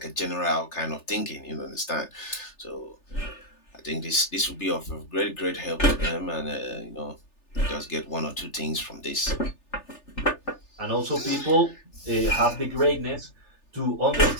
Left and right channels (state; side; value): late; right; 3.4 ms